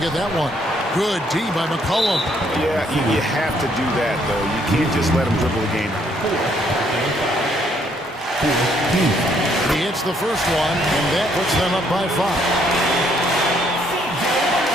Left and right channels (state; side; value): normal; both; correlation 0.68